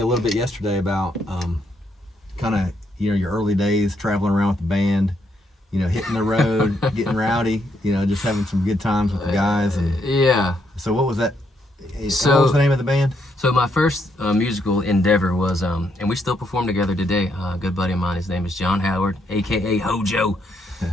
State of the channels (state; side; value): normal; both; correlation 0.76